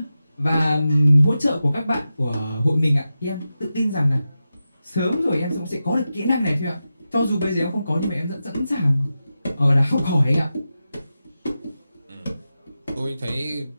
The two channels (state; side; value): inverted; both; correlation -0.91